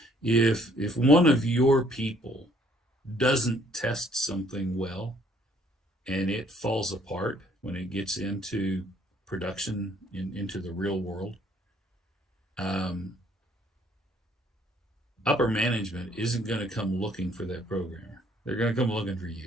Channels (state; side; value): normal; both; correlation 0.63